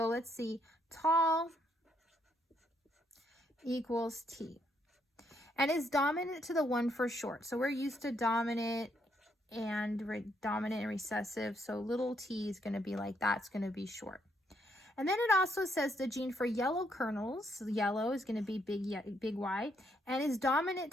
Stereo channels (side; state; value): both; normal; correlation 0.74